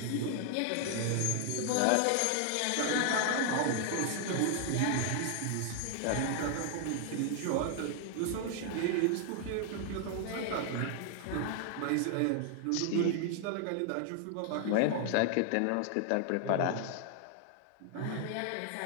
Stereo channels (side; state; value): both; different; correlation 0.00